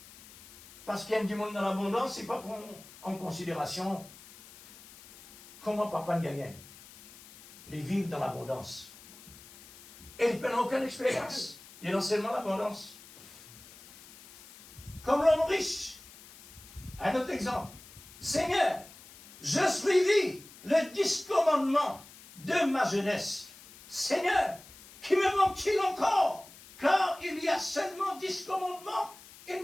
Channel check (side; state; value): left; noise; hiss, 20 dB below the sound